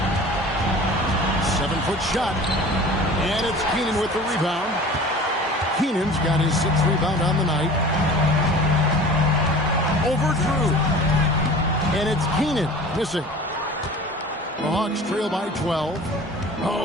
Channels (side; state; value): both; normal; correlation 0.41